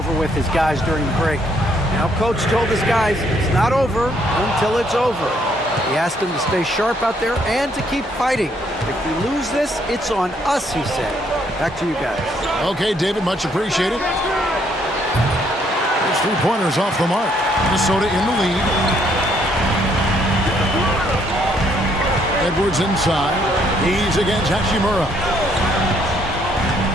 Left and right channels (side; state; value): both; normal; correlation 0.69